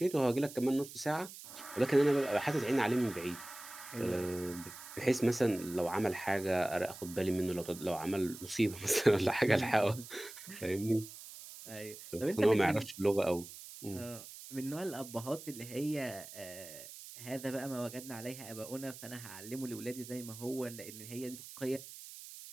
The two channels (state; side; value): noise; right; hiss, 14 dB below the sound